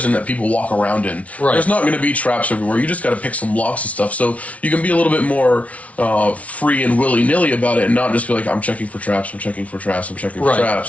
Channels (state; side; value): late; right; 0.066 ms